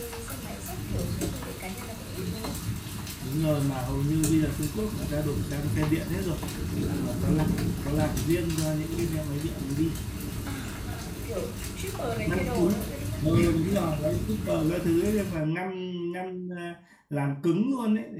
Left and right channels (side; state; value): both; identical; correlation 1.00